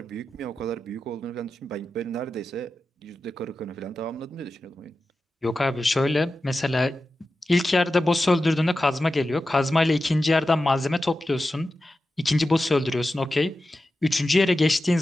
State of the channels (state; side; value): normal; both; correlation 0.92